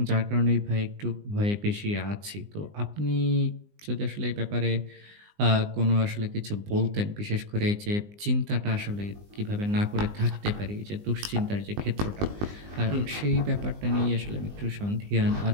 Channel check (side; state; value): left; late; 20 ms